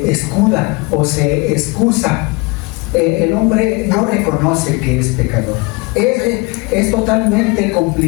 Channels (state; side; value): quieter; right; 26.8 dB